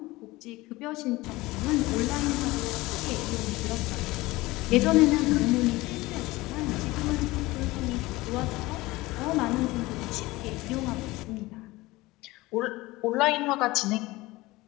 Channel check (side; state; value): right; quieter; 20.1 dB